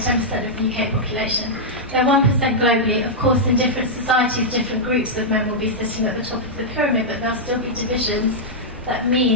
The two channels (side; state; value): both; normal; correlation -0.07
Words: of the UK population. They're 1% globally. Of course, in different societies, different groups of men will be sitting at the top of the pyramid, but there'll still be divisions that